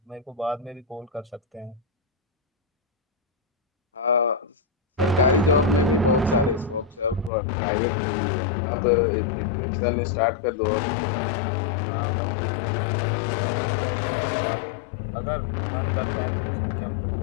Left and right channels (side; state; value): right; drops out; at 7.3 s